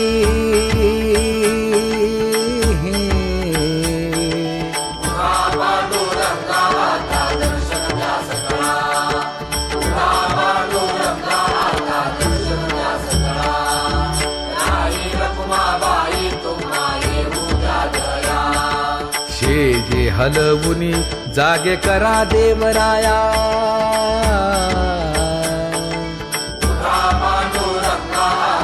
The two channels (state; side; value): identical; both; correlation 1.00